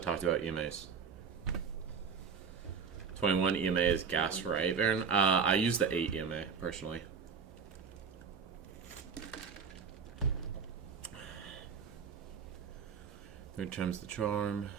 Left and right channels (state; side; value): quieter; left; 6.0 dB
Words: about EMAs. 21 EMA is gas, right, Aaron? I use the 8 EMA, personally. Third time's the charm.